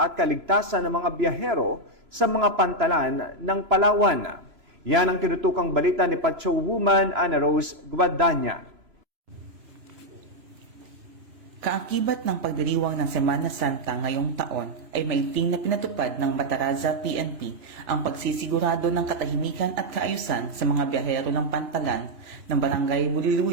kaligtasan ng mga biyahero sa mga pantalan ng Palawan. Yan ang tinutukang balita ni Pacho Woman Ana Rose Guadagna. Kaakibat ng pagdiriwang ng Semana Santa ngayong taon ay maiting na pinatupad ng Bataraza PNP ang pagsisigurado ng katahimikan at kaayusan sa mga biyahero ng pantalan ng Barangay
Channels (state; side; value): late; left; 3.0 ms